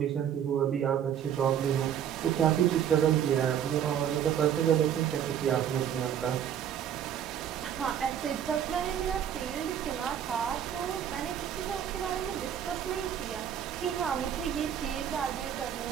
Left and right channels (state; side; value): quieter; left; 9.4 dB